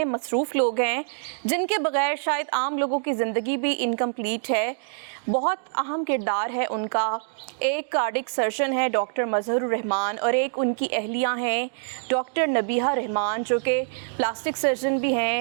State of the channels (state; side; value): silent; left; digital silence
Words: मसरूफ़ लोग हैं जिनके बग़ैर शायद आम लोगों की ज़िंदगी भी इनकम्प्लीट है। बहुत अहम किरदार है उनका। एक कार्डिक सर्जन है डॉक्टर मज़हरुर रहमान और एक उनकी अहलिया हैं डॉक्टर नबीहा रहमान, जो कि प्लास्टिक सर्जन भी